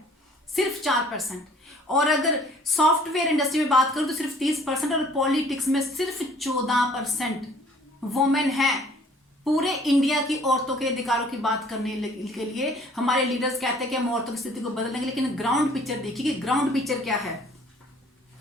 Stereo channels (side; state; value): both; normal; correlation 0.55